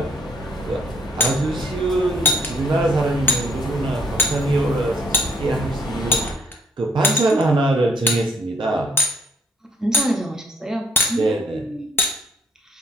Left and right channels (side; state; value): both; normal; correlation 0.66